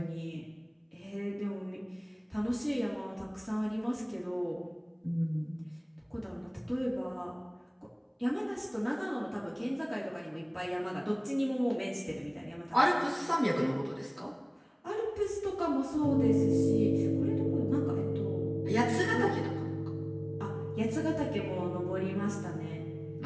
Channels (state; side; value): identical; both; correlation 1.00